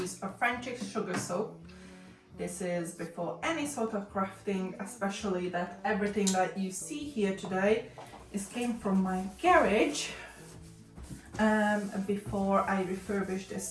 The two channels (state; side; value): identical; both; correlation 1.00